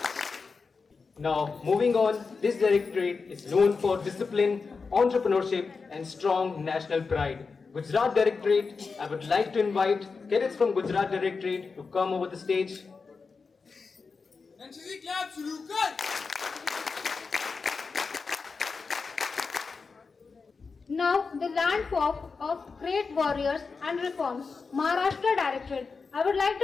Now, moving on, this directorate is known for discipline, entrepreneurship and strong national pride. Gujarat Directorate, I would like to invite cadets from Gujarat Directorate to come over the stage. NCC clap शुरू कर. Now, the landform of great warriors and reforms, Maharashtra Directorate. I would like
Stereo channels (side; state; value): right; quieter; 4.7 dB